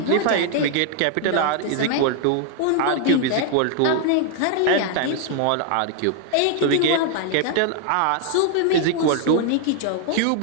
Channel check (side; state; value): both; different; correlation 0.00